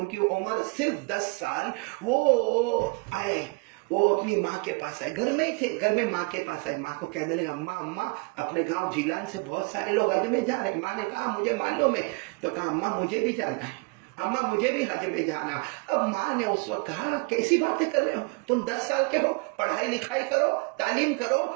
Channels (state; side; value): quieter; left; 32.2 dB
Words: کی عمر صرف 10 سال، وہ آئے، وہ اپنی ماں کے پاس آئے، گھر میں ہی تھے، گھر میں ماں کے پاس آئے، ماں کو کہنے لگا، اماں اپنے گاؤں جیلان سے بہت سارے لوگ حج میں جا رہے ہیں۔ ماں نے کہا مجھے معلوم ہے، تو کہا اماں مجھے بھی جانا ہے، اماں مجھے بھی حج میں جانا۔ اب ماں نے اس وقت کہا کیسی باتیں کر رہے ہو، تم 10 سال کے ہو، پڑھائی لکھائی کرو، تعلیم کرو،